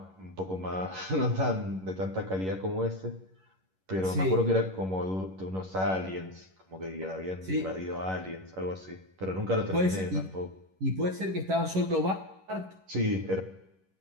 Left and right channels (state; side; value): late; left; 11 ms